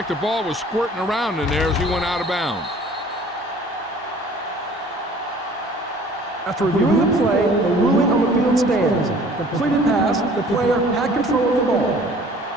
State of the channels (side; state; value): both; normal; correlation 0.51